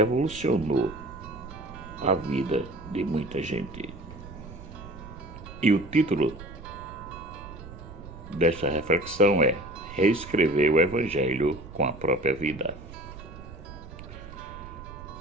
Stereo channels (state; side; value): noise; right; rumble, 14 dB below the sound